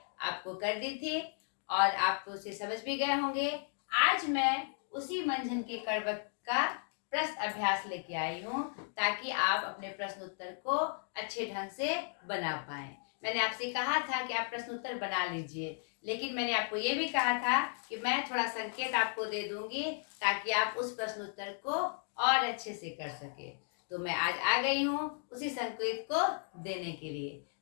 आपको कर दी थी और आप तो उसे समझ भी गए होंगे। आज मैं उसी मंझन के कड़वक का प्रश्न अभ्यास लेके आई हूँ, ताकि आप अपने प्रश्न उत्तर को अच्छे ढंग से बना पाएं। मैंने आपसे कहा था कि आप प्रश्न उत्तर बना लीजिए, लेकिन मैंने आपको ये भी कहा था कि मैं थोड़ा संकेत आपको दे दूंगी ताकि आप उस प्रश्न उत्तर को और अच्छे से कर सके। तो मैं आज आ गई हूँ उसी संकेत को देने के लिए।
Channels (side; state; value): right; silent; 54 dB below the other